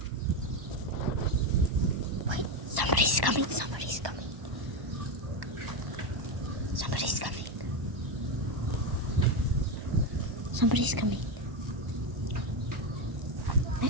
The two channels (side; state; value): left; late; 1.1 ms